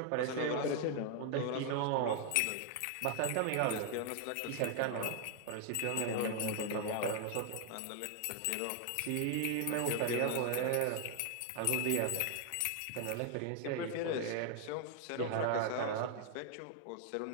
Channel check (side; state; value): both; different; correlation 0.00